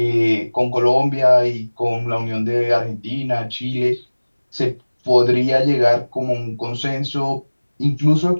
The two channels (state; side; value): inverted; both; correlation -1.00